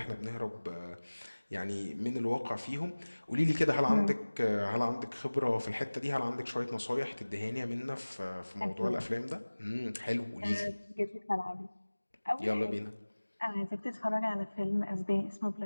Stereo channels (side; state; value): both; inverted; correlation -1.00